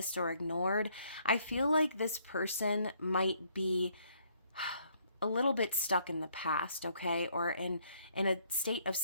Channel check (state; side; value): inverted; both; correlation -0.68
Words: or ignored. I feel like this person might be a little bit stuck in the past, okay? Or in a state of